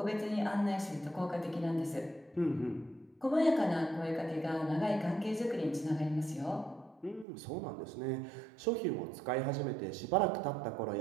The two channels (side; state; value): left; drops out; at 7.2 s